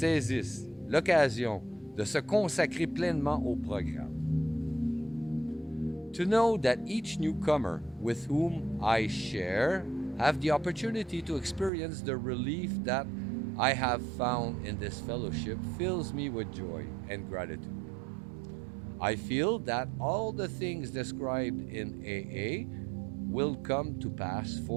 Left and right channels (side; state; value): left; drops out; at 11.7 s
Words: l'occasion de se consacrer pleinement au programme. To know that each newcomer with whom I share have the opportunity to experience the relief that I have found in this fellowship fills me with joy and gratitude. I feel that all the things described in AA will come to pass